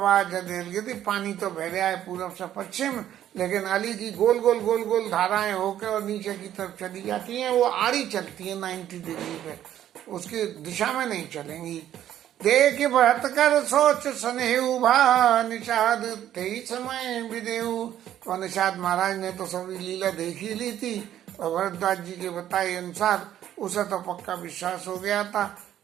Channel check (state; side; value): quieter; left; 11.5 dB